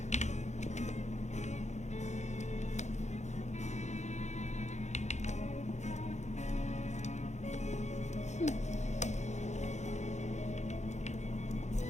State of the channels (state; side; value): late; right; 0.33 ms